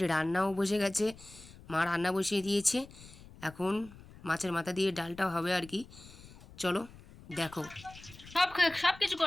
রান্নাও বসে গেছে, মা রান্না বসিয়ে দিয়েছে। এখন মাছের মাথা দিয়ে ডালটাও হবে আর কি। চলো দেখো। সব কিছু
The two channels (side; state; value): left; noise; rumble, 20 dB below the sound